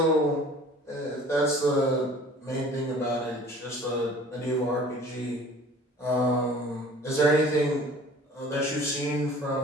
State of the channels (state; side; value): normal; both; correlation 0.47